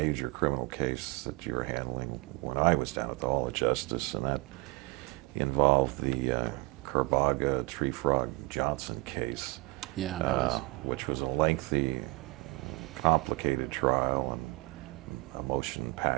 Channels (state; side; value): quieter; left; 23.6 dB